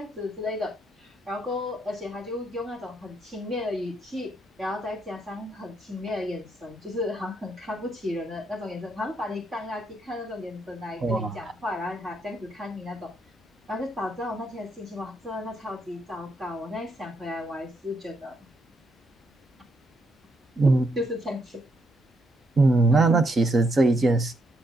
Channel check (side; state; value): both; normal; correlation 0.76